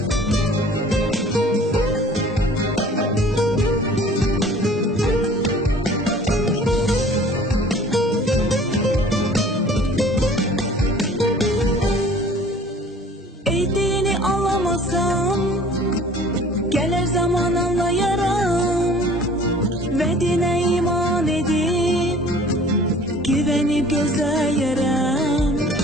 Gelir zaman anlayarım ve dine iman edip güvenip gözleyerem.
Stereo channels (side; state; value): both; normal; correlation 0.49